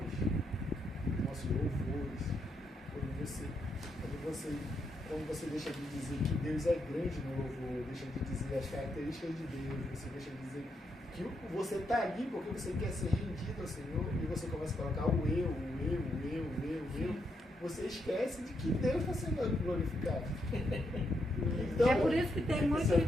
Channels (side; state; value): both; normal; correlation 0.80